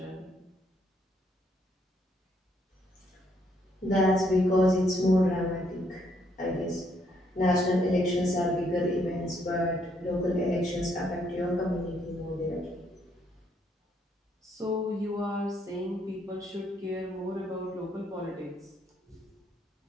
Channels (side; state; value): both; normal; correlation 0.71